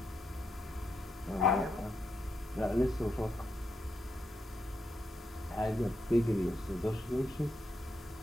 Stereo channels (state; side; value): normal; both; correlation 0.82